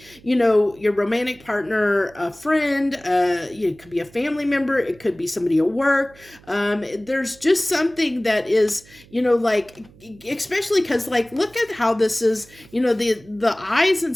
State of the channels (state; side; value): noise; right; hum, 25 dB below the sound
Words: your romantic partner, a friend, it could be a family member, it could be somebody at work. There's just something that is, like, especially because, like, look at how this is, the eyes